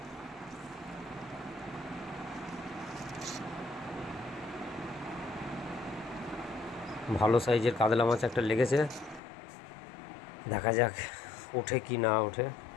ভালো সাইজের কাতলা মাছ একটা লেগেছে, দেখা যাক ওঠে কি না ওঠে।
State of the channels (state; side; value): drops out; right; at 9.2 s